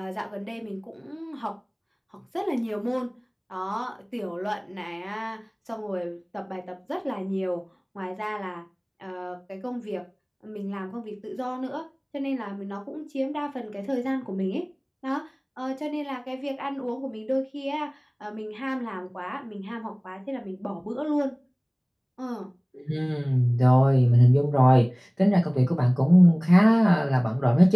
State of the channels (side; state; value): both; identical; correlation 1.00